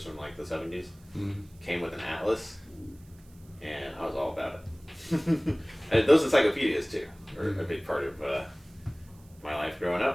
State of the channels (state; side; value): noise; right; hiss, 29 dB below the sound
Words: from, like, the 70s. Mm-hmm. Came with an atlas, and I was all about it. And those encyclopedias, too, were a big part of my life growing